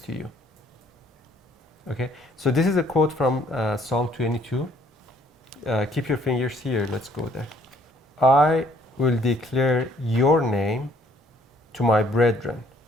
you. Okay, so this is a quote from Psalm 22. Keep your fingers here, let's go there. I will declare your name to my brethren.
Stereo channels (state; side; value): normal; both; correlation 0.62